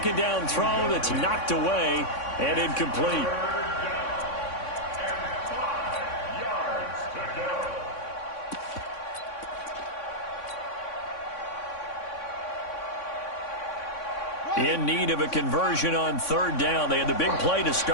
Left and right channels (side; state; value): right; late; 3.6 ms